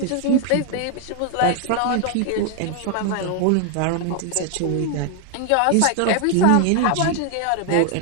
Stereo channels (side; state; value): both; different; correlation 0.00